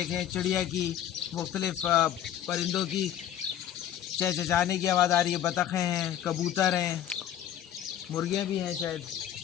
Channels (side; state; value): right; quieter; 10.8 dB